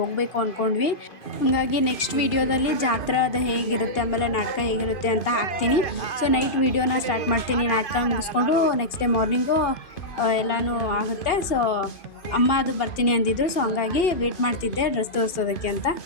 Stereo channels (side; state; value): right; late; 2.5 ms